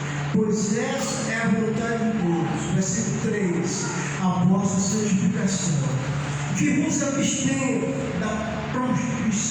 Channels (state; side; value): identical; both; correlation 1.00